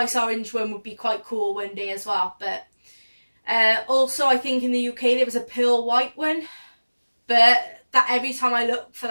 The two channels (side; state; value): both; inverted; correlation -1.00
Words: orange one would be quite cool one day as well. But also I think in the UK there was a pearl white one. But that every time I look for